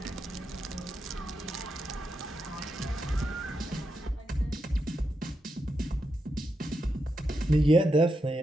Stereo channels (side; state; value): both; normal; correlation 0.85